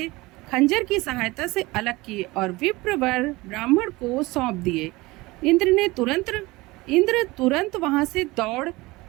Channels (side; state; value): left; quieter; 21.5 dB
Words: खंजर की सहायता से अलग किए और विप्रवर ब्राह्मण को सौंप दिए। इंद्र तुरंत वहां से